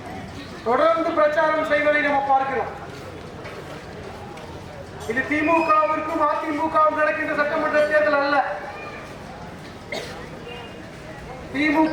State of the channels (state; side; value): identical; both; correlation 1.00